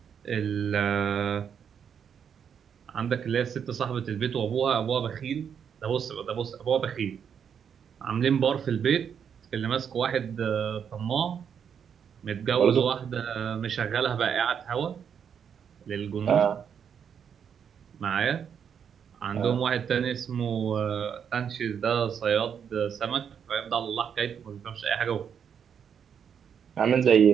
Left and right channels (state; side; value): quieter; left; 7.6 dB